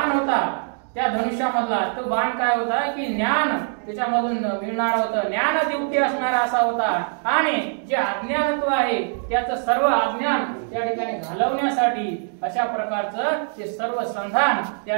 होता त्या धनुष्यामधला तो बाण काय होता की ज्ञान त्याच्यामधून मिळणार होतं, ज्ञान दिवटी असणारा असा होता। आणि जे अज्ञानत्व आहे त्याचं सर्व अज्ञान त्या ठिकाणी घालवण्यासाठी अशा प्रकारचं ते सर्व संधान त्या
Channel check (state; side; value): silent; left; digital silence